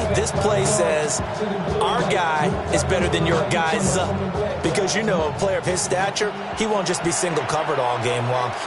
this play says our guy is better than your guys. Because, you know, a player of his stature, he won't just be single covered all game long.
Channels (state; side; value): identical; both; correlation 1.00